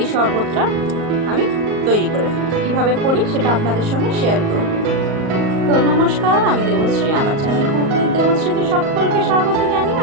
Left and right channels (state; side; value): late; left; 38 ms